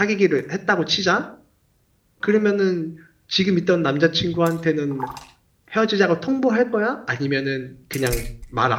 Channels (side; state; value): both; identical; correlation 1.00